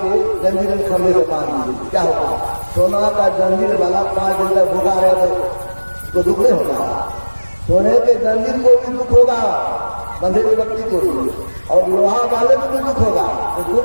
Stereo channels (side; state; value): both; inverted; correlation -1.00